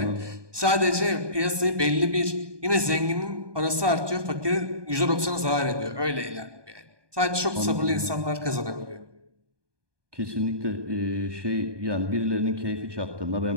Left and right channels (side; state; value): left; late; 1.2 ms